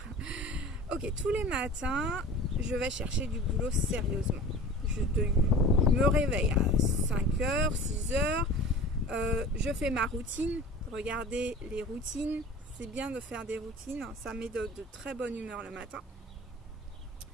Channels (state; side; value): normal; both; correlation 0.40